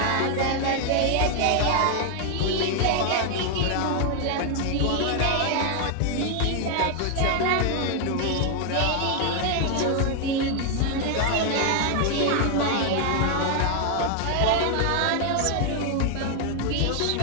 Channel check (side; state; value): both; different; correlation 0.00